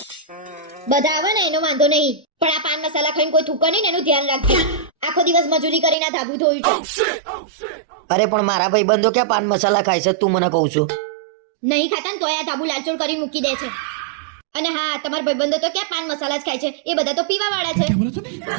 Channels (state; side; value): drops out; left; at 6.0 s